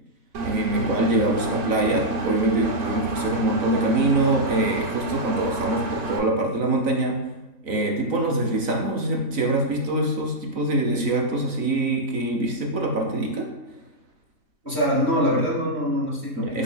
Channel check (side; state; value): left; late; 4.0 ms